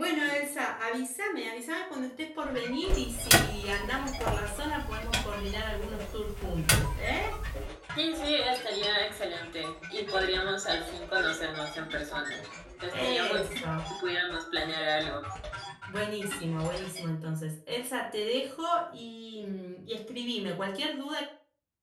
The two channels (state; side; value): identical; both; correlation 1.00